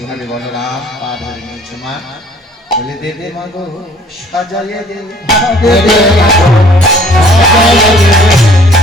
বলরাম পা ধরে নিয়েছে মা বলে দেবে মা গো সাজাইয়ে দে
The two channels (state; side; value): normal; both; correlation 0.56